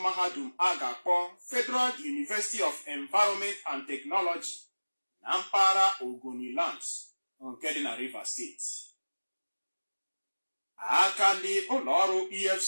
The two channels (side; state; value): both; inverted; correlation -1.00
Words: mahadum a ga-akpọ Federal University of Environment and Technology na mpaghara Ogoniland nke dị na Rivers Steeti. Aka ndị ụlọọrụ